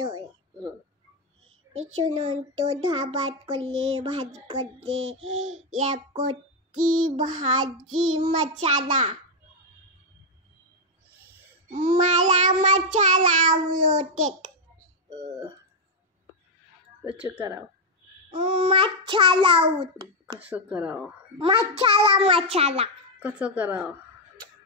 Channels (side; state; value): both; normal; correlation 0.01